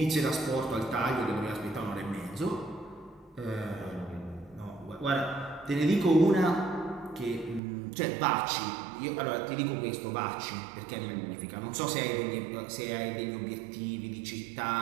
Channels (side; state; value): left; drops out; at 7.6 s